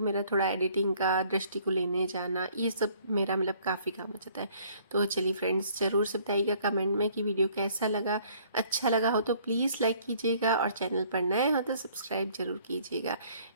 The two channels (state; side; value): inverted; both; correlation -0.59